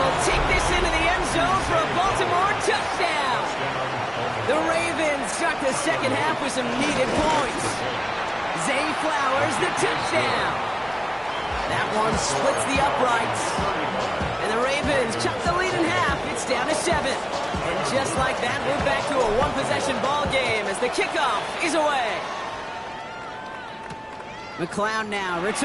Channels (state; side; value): identical; both; correlation 1.00